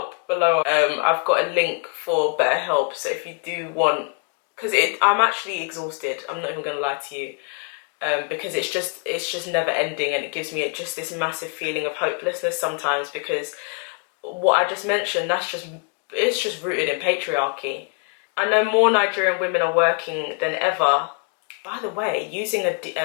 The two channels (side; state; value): right; quieter; 35.5 dB